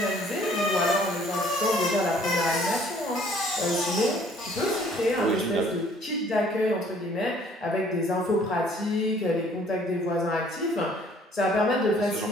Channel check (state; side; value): normal; both; correlation 0.58